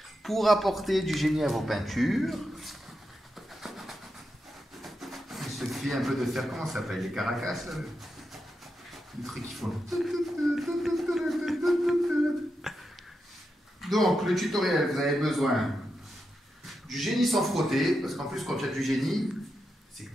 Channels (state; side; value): normal; both; correlation 0.87